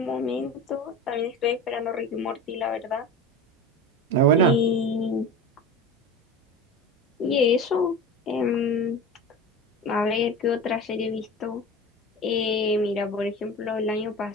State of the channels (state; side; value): normal; both; correlation 0.31